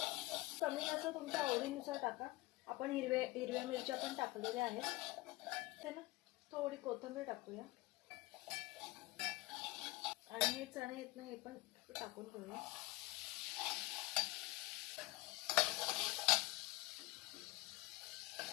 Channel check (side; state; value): right; quieter; 20.8 dB